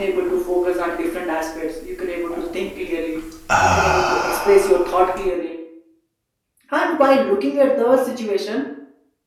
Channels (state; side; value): identical; both; correlation 1.00